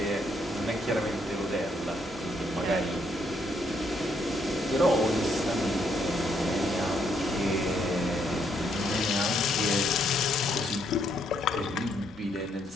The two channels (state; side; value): normal; both; correlation 0.73